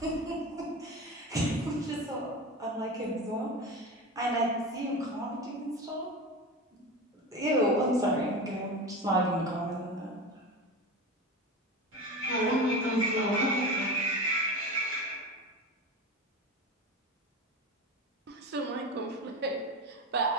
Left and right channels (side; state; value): both; normal; correlation 0.27